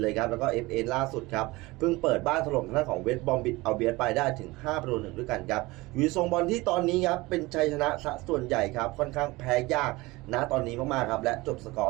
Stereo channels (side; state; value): left; quieter; 21.5 dB